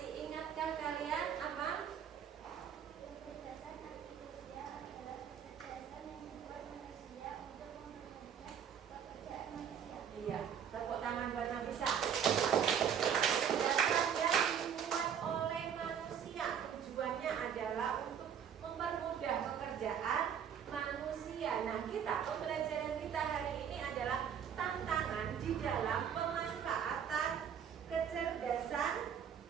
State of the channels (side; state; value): left; quieter; 8.2 dB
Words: ingatkah kalian apa? Kecerdasan artifisial adalah kecerdasan yang membuat manusia untuk mempermudah pekerjaan manusia. Iya, tepuk tangan buat Nafisa. Kecerdasan yang dibuat oleh manusia, tujuannya adalah untuk mempermudah pekerjaan manusia. Nah, pembelajaran kita hari ini adalah tantangan di dalam pemanfaatan kecerdasan